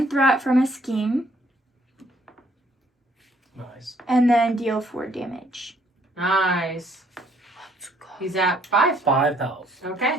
threat from a scheme, Nice. and then deal 4 damage. Nice. He's at 5. 5 health.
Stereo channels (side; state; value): both; normal; correlation 0.65